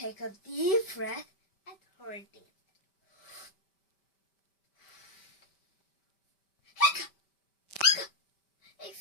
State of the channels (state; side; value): late; right; 5.1 ms